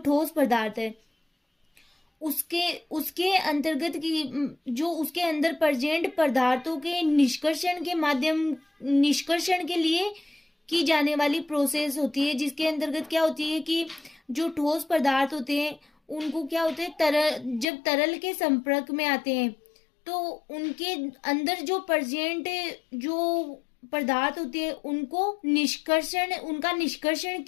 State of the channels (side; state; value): right; drops out; at 17.7 s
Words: पदार्थ है, उसके अंतर्गत की जो उसके अंदर प्रेजेंट पदार्थों के निष्कर्षण के लिए की जाने वाली प्रोसेस होती है, जिसके अंतर्गत क्या होती है कि जो ठोस पदार्थ होते हैं उनको क्या होते हैं, जब तरल के संपर्क में आते हैं तो उनके अंदर जो प्रेजेंट जो पदार्थ होते हैं उनका निष्कर्षण